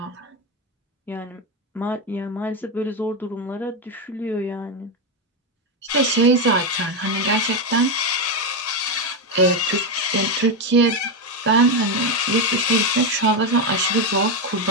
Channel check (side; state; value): both; normal; correlation 0.08